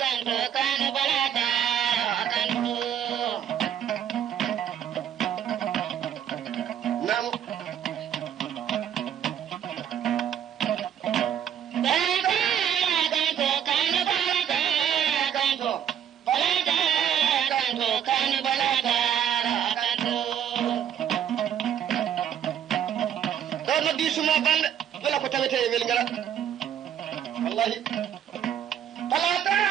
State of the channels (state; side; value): quieter; left; 9.5 dB